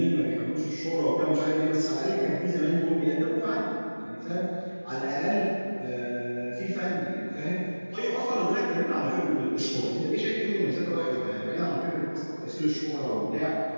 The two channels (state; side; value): inverted; both; correlation -1.00